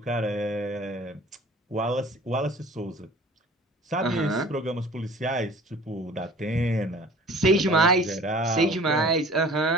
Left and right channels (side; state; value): both; normal; correlation 0.47